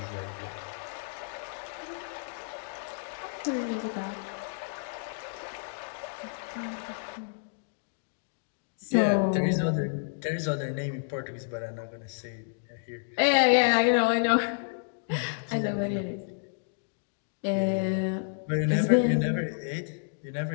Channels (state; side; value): silent; right; digital silence